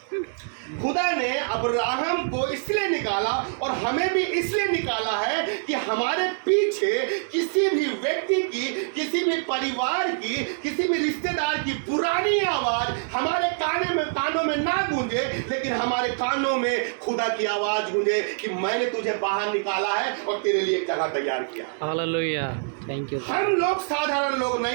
खुदा ने अब्राहम को इसलिए निकाला और हमें भी इसलिए निकाला है कि हमारे पीछे किसी भी व्यक्ति की, किसी भी परिवार की, किसी भी रिश्तेदार की पुरानी आवाज हमारे कानों में ना गूंजे, लेकिन हमारे कानों में खुदा की आवाज गूंजे कि मैंने तुझे बाहर निकाला है और तेरे लिए एक जगह तैयार किया। Hallelujah, thank you. हम लोग साधारण लोग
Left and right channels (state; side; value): silent; left; 62 dB below the other